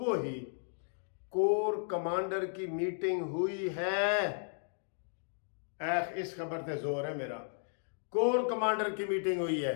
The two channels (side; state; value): right; silent; digital silence